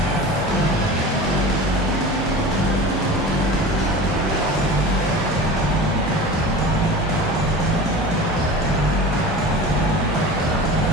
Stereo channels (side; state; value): both; normal; correlation 0.35